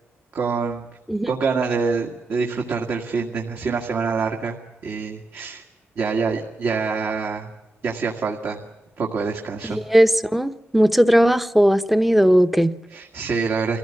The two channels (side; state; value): both; normal; correlation 0.92